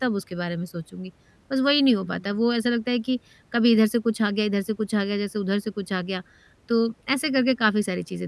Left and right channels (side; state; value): both; identical; correlation 1.00